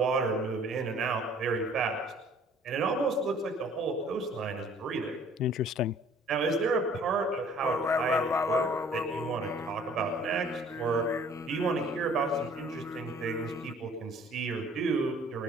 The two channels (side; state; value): both; normal; correlation 0.54